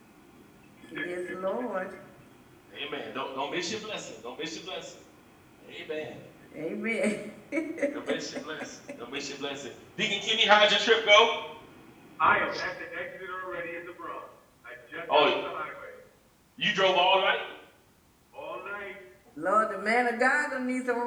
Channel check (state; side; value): identical; both; correlation 1.00